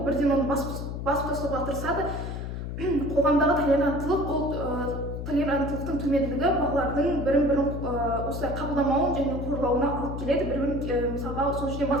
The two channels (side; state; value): left; noise; hum, 5 dB below the sound